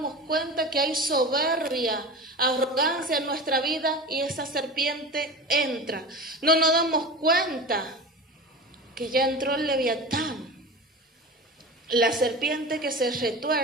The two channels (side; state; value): both; normal; correlation 0.31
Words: cuenta que hay soberbia, arrogancia en nuestra vida y esa serpiente entra. No nos damos cuenta que ya entró el Leviatán, la serpiente que se